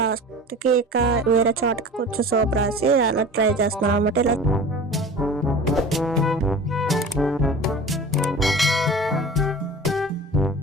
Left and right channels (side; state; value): both; normal; correlation 0.38